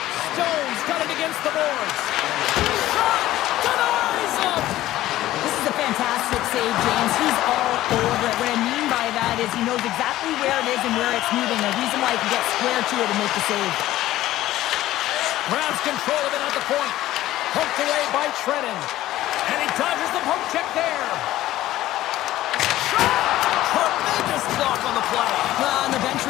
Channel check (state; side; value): quieter; right; 14.9 dB